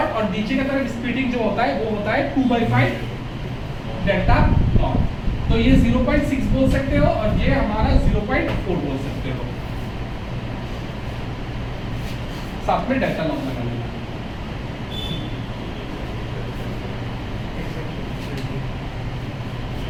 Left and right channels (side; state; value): both; identical; correlation 1.00